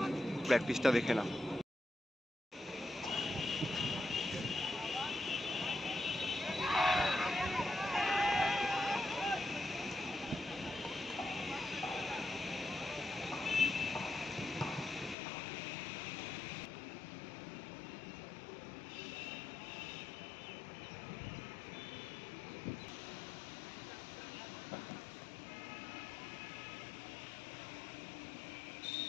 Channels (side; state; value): right; drops out; at 15.2 s